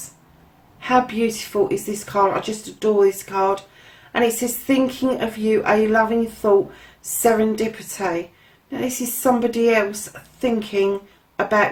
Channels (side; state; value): both; identical; correlation 1.00